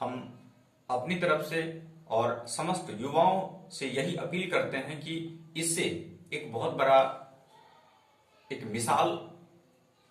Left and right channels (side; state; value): both; identical; correlation 1.00